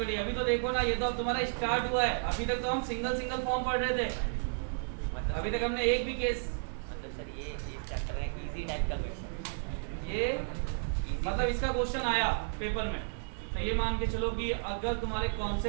अभी तो देखो ना, ये तो अब तुम्हारा स्टार्ट हुआ है। अभी तक तो हम सिंगल सिंगल फॉर्म पढ़ रहे थे, अभी तक हमने एक भी केस, मतलब सर ये चैप्टर है इजी टाइप का क्वेश्चन, ये मतलब इसका क्वेश्चन आया पेपर में, तो ये मान के चलो कि अगर तुम्हारे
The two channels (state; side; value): silent; left; digital silence